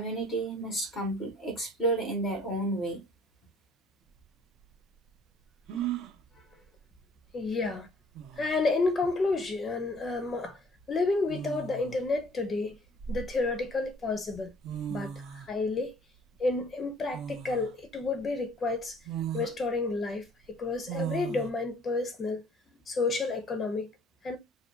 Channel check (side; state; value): both; normal; correlation 0.56